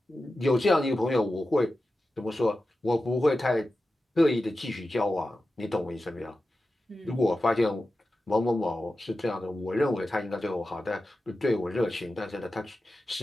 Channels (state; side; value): normal; both; correlation 0.93